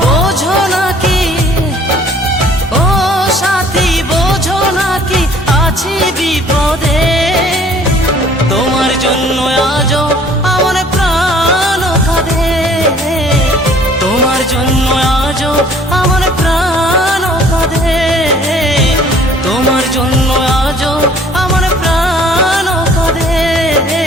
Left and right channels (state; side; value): normal; both; correlation 0.55